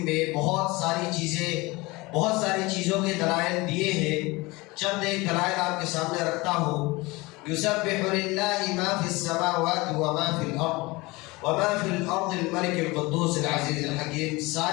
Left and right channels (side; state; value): right; quieter; 23.1 dB